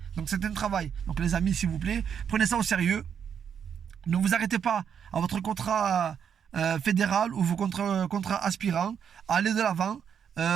Donc c'est un travail. Donc les amis, s'il vous plaît, prenez ça au sérieux. Ne vous arrêtez pas à votre contrat fédéral ou vos contrats aspirants. Allez de l'avant.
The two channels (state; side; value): quieter; left; 7.8 dB